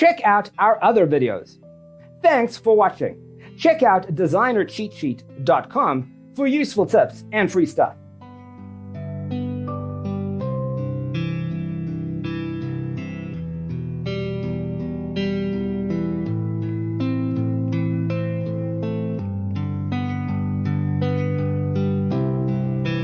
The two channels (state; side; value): identical; both; correlation 1.00